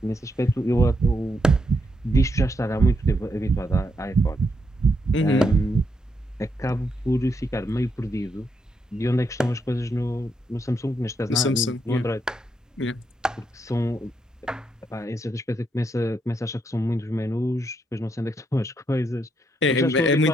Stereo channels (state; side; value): normal; both; correlation 0.79